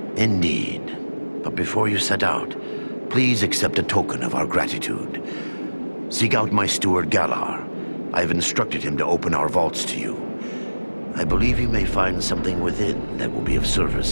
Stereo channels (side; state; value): both; inverted; correlation -1.00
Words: Indeed. But before you set out, please accept a token of our gratitude. Seek out my steward Galar. I have instructed him to open our vaults to you. I believe you may find something within that will be of